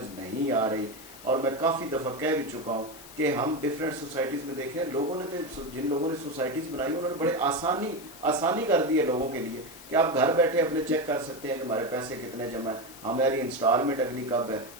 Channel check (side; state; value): left; noise; hiss, 19 dB below the sound